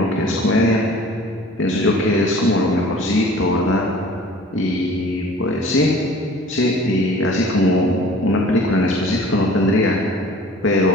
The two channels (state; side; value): normal; both; correlation 0.47